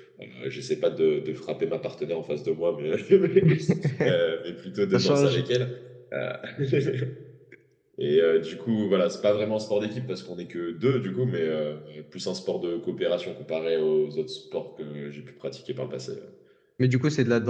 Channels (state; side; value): identical; both; correlation 1.00